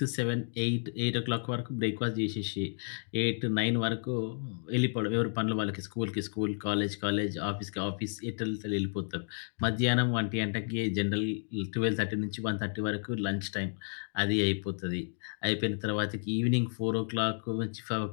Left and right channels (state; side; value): silent; right; digital silence